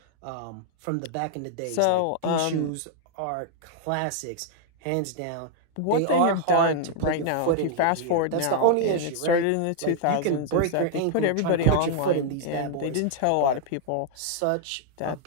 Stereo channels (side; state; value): both; different; correlation -0.01